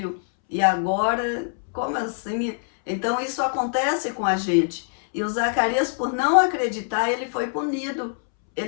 e agora, como assim? Então isso acontece com a gente. E o Zacarias, por não acreditar, ele foi punido.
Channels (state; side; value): silent; right; 63 dB below the other